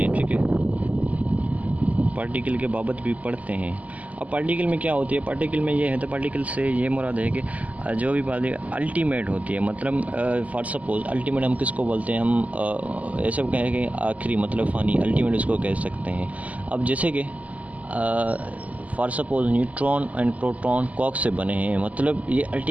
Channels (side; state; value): left; late; 0.073 ms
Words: हैं, ठीक है। पार्टिकल के बाबत भी पढ़ते हैं। अब पार्टिकल में क्या होती है, पार्टिकल में ये है, तो पार्टिकल से ये मुराद है कि जो भी बात अल्टीमेट होती है, मतलब फॉर सपोज अल्टीमेट हम किसको बोलते हैं, हम ऐसे कहें कि आखिरी, मतलब फ़ानी, अल्टीमेट उसको कह सकते हैं। अब जैसे कि for suppose neutron and proton कॉक से बने हैं, मतलब ये